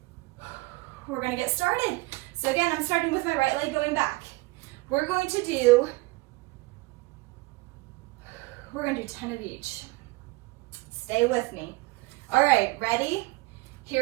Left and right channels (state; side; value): quieter; left; 22.9 dB